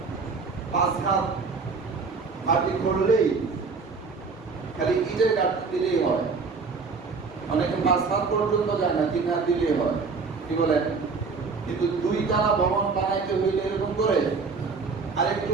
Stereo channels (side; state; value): left; quieter; 4.7 dB